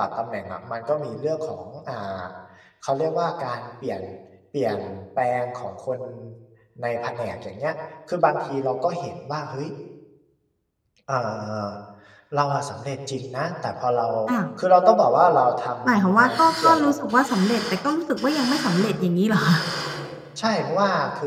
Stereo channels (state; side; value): identical; both; correlation 1.00